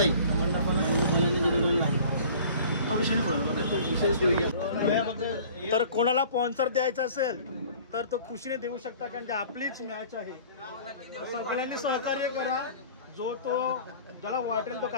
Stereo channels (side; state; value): both; inverted; correlation -0.48